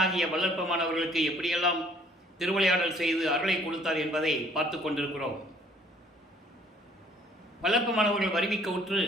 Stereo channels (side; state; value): both; normal; correlation 0.59